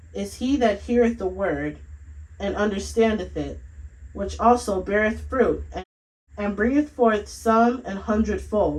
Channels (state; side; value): identical; both; correlation 1.00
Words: is he that heareth the word, and understandeth it, which also beareth fruit, and bringeth forth some